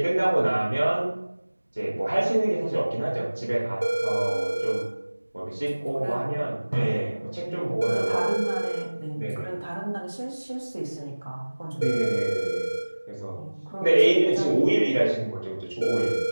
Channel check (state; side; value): inverted; both; correlation -1.00